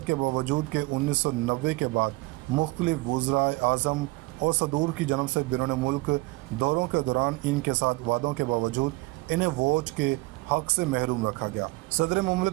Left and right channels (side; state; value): left; quieter; 22.9 dB